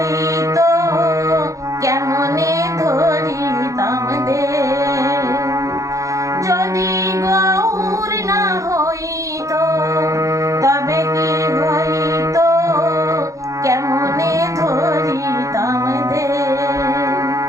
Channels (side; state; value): left; late; 0.15 ms